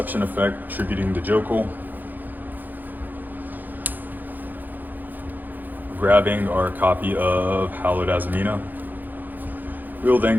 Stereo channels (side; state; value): left; late; 0.086 ms